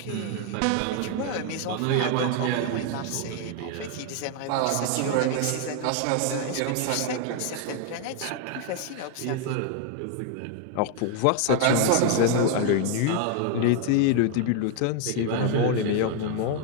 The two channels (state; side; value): different; both; correlation 0.01